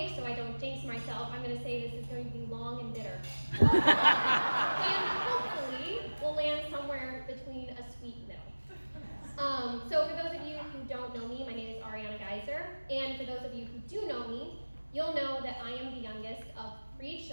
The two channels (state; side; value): inverted; both; correlation -1.00